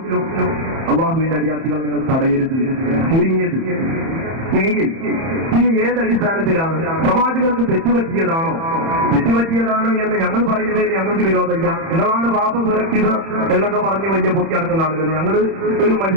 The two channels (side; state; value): left; late; 31 ms